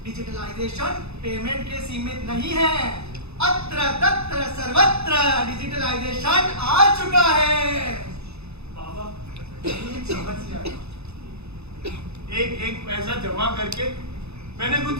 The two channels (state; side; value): late; left; 0.79 ms